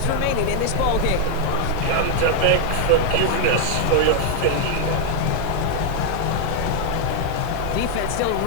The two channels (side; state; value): both; different; correlation 0.00